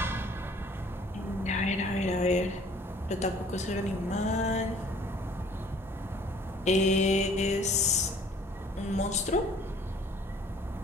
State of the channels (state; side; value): normal; both; correlation 0.54